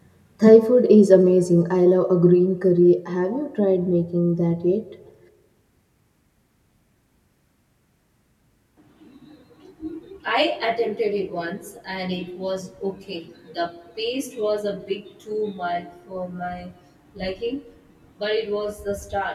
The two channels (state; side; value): identical; both; correlation 1.00